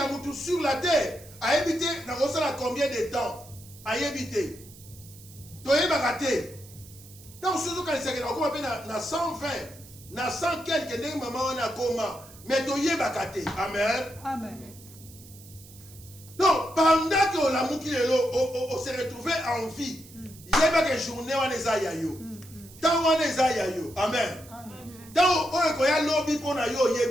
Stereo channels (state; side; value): noise; right; hiss, 20 dB below the sound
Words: mutu sur la terre ayebi te nakosala combien de temps ayebi te toyebaka te ntango soki ozokanisaka nakokoma mpe na 120 na 100 quelque ndenge mama wana akoma mais toyebaka te amen Amen. donc pendant que olamuki lelo on se retrouve en vie yebaka journée wana eza ya yo ntango wana eza ya yo amen ntango oyo ekoya lobi mpo na yo